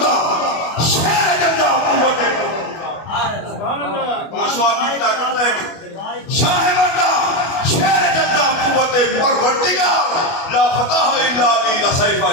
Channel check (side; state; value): right; late; 25 ms